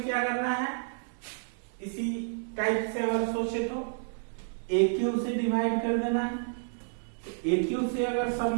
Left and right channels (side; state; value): left; silent; digital silence